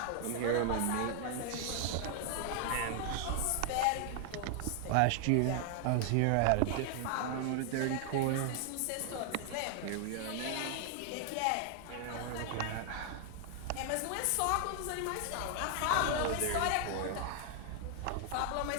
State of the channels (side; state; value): both; different; correlation 0.00